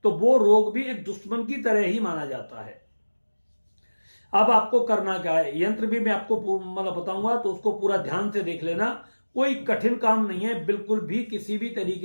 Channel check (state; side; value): inverted; both; correlation -1.00